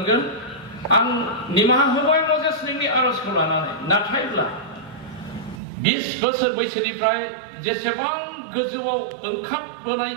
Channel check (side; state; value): left; drops out; at 5.6 s